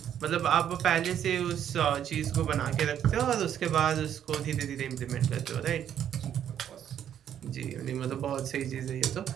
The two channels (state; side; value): quieter; left; 9.8 dB